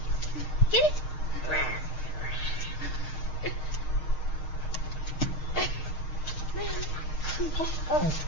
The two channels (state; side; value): late; right; 6.4 ms